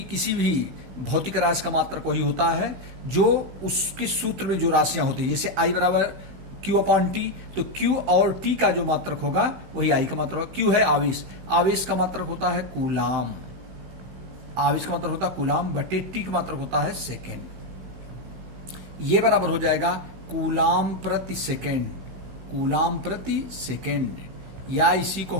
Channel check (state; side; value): late; left; 16 ms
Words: भी भौतिक राशि का मात्रक वही होता है जो उसके सूत्र में जो राशियां होती है। जैसे आई बराबर Q अपॉन T, तो Q और T का जो मात्रक होगा वही आई का मात्रक होगा। Q है आवेश, आवेश का मात्रक होता है कूलाम, आवेश का मात्रक होता है कूलाम बटे T का मात्रक होता है सेकेंड। ये बराबर हो जाएगा कूलाम प्रति सेकेंड, कूलाम प्रति सेकेंड, या इसी को